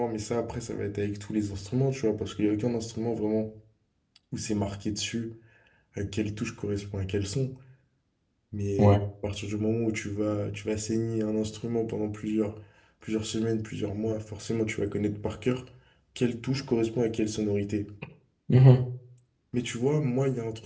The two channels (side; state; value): both; identical; correlation 1.00